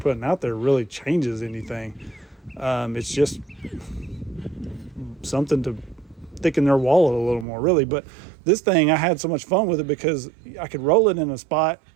out there really changes anything. It's just something to thicken their wallet a little more, really. But this thing, I had so much fun with it because I could roll it in a spot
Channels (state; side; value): drops out; left; at 7.5 s